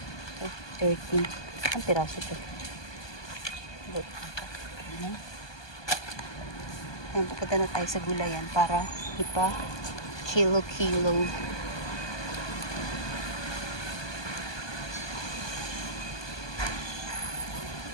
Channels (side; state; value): right; late; 1.2 ms